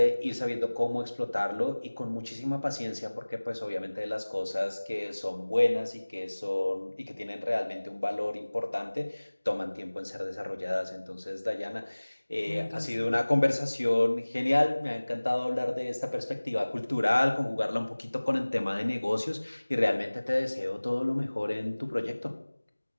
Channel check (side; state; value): both; inverted; correlation -1.00